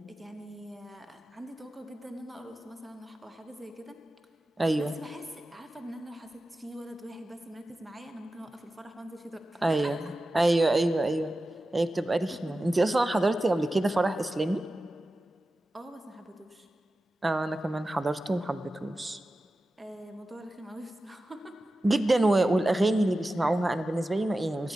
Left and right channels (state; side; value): normal; both; correlation 0.94